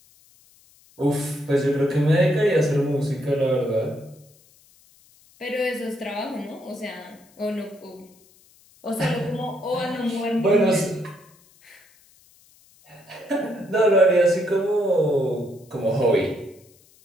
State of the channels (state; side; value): noise; left; hiss, 29 dB below the sound